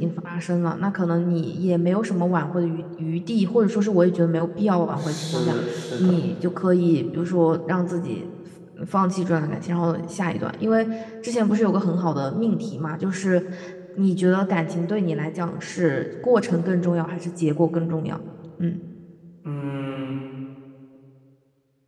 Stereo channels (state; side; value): identical; both; correlation 1.00